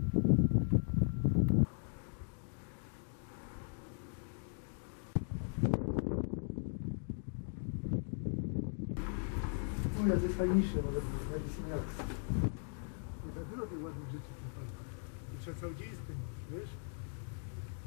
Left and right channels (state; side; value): silent; right; 52 dB below the other